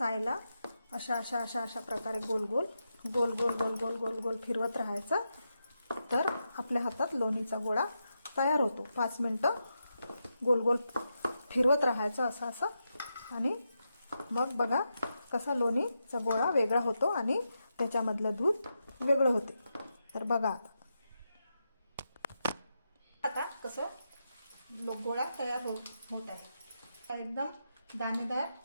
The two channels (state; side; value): inverted; both; correlation -0.86